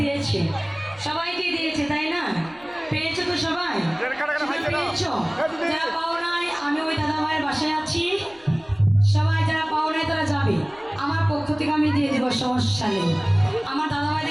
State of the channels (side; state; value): left; noise; rumble, 28 dB below the sound